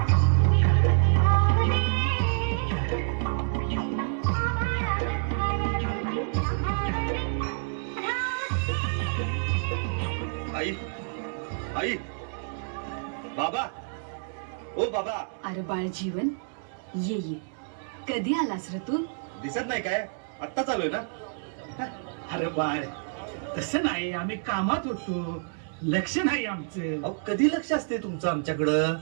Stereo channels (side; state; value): left; silent; digital silence